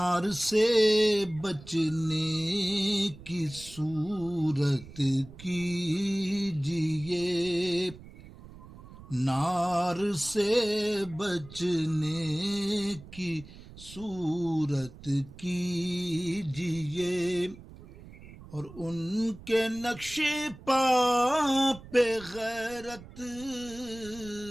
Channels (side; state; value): right; noise; rumble, 18 dB below the sound